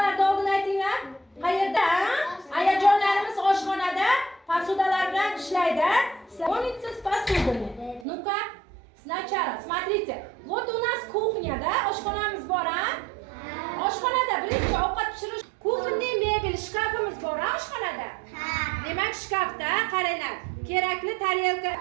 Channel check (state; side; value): drops out; left; at 8.1 s